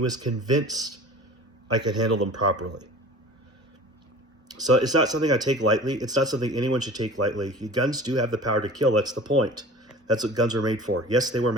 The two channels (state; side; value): normal; both; correlation 0.42